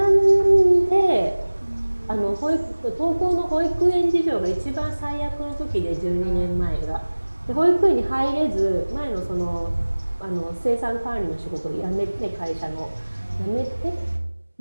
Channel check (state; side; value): inverted; both; correlation -1.00